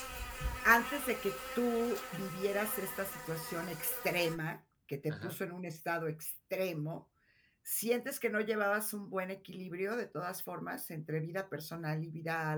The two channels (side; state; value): both; identical; correlation 1.00